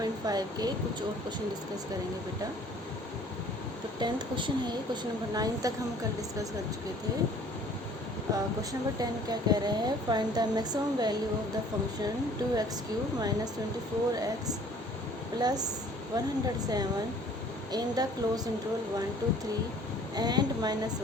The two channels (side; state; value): both; normal; correlation 0.53